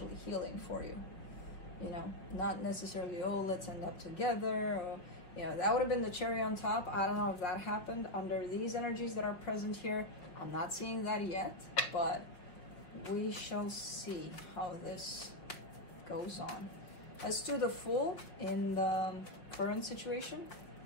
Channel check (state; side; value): late; right; 5.5 ms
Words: healing for you. You know, not necessarily, oh, let's end up together, or, you know, that would have been the cherry on top. I don't know if that happened under these energies that are present here. I'm not seeing that yet, but we shall see how this goes on. Let's do the Fool in the current situation.